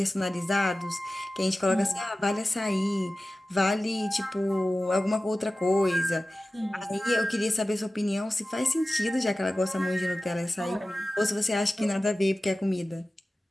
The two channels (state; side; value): normal; both; correlation 0.96